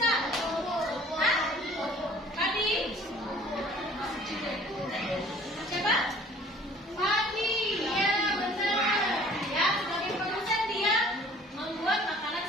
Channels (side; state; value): both; normal; correlation 0.52